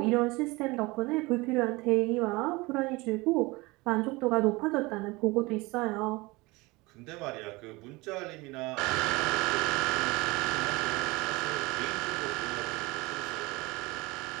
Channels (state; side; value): quieter; left; 23.2 dB